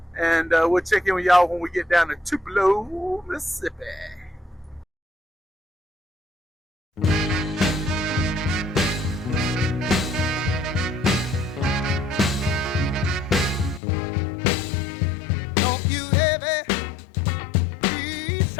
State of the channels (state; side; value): drops out; right; at 13.8 s